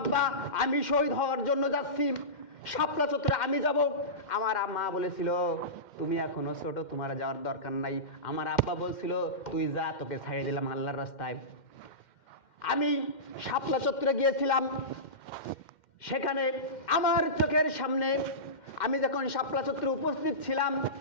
আমি শহীদ হওয়ার জন্য যাচ্ছি, শাপলা চত্বরে আমি যাব। আমার আম্মা বলেছিল, তুমি এখনো ছোট, তোমার যাওয়ার দরকার নাই। আমার আব্বা বলছিল, তুই যা, তোকে ছাড়িয়ে দিলাম আল্লাহর রাস্তায়। আমি শাপলা চত্বরে গিয়েছিলাম, সেখানে আমার চোখের সামনে আমি যখন শাপলা চত্বরে উপস্থিত ছিলাম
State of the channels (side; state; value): right; late; 2.1 ms